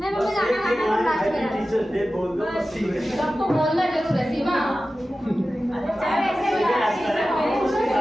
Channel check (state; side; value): normal; both; correlation 0.95